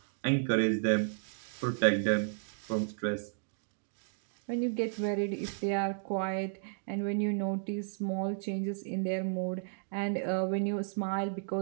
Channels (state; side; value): silent; left; digital silence